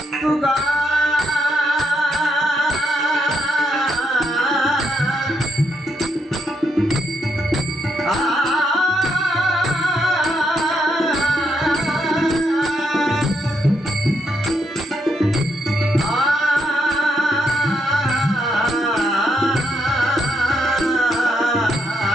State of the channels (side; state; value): both; normal; correlation 0.77